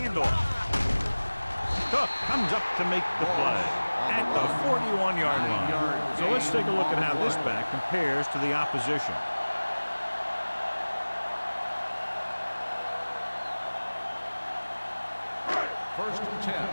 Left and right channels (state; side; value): inverted; both; correlation -1.00